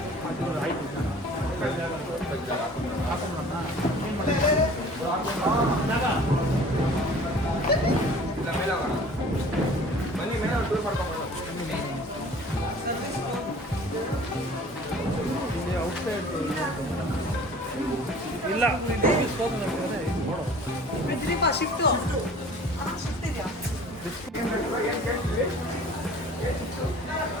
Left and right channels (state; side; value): normal; both; correlation 0.47